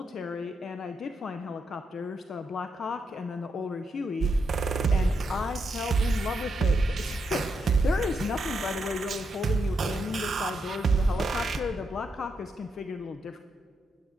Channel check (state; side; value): normal; both; correlation 0.82